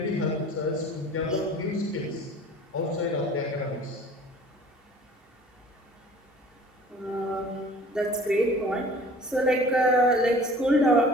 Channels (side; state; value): both; normal; correlation 0.47